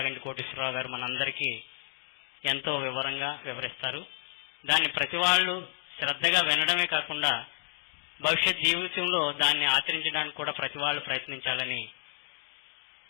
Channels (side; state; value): right; silent; digital silence